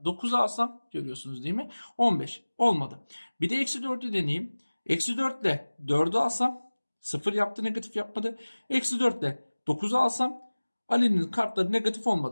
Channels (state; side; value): inverted; both; correlation -1.00